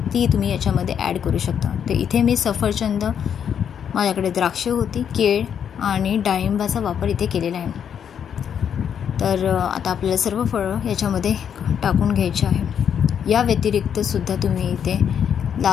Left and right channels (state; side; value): quieter; right; 8.2 dB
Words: तुम्ही याच्यामध्ये ॲड करू शकता। तर इथे मी सफरचंद, माझ्याकडे द्राक्ष होती, केळ आणि डाळिंबाचा वापर इथे केलेला आहे। तर आता आपल्याला सर्व फळं याच्यामध्ये टाकून घ्यायची आहे। या व्यतिरिक्त सुद्धा तुम्ही इथे